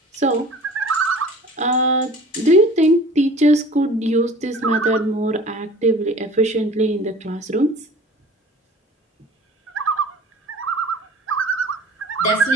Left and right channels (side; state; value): both; normal; correlation 0.44